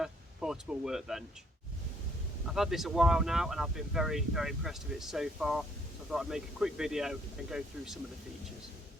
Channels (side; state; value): both; normal; correlation 0.66